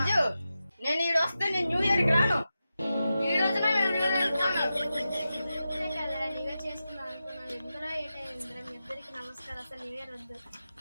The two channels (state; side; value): inverted; both; correlation -0.92